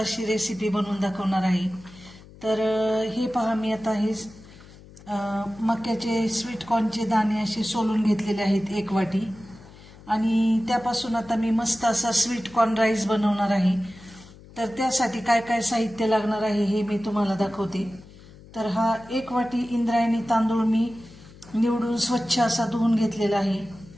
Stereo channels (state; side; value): noise; left; hum, 21 dB below the sound